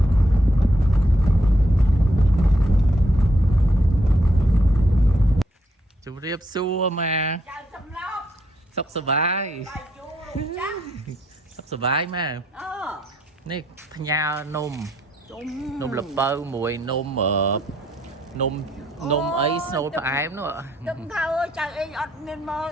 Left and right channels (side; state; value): both; normal; correlation 0.74